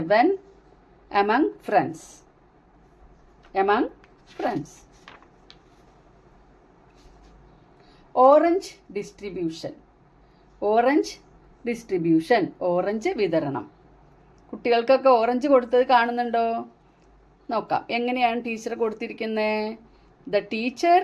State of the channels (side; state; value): both; identical; correlation 1.00